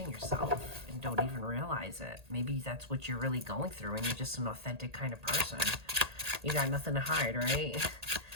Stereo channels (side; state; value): left; late; 1.8 ms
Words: yourself and don't even realize it. Maybe that's what you're really going through, and you're just an authentic kind of person. You got nothing to hide, right?